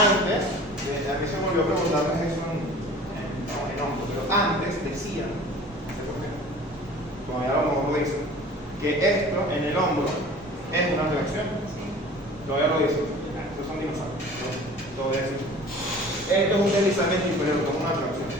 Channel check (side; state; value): both; normal; correlation 0.44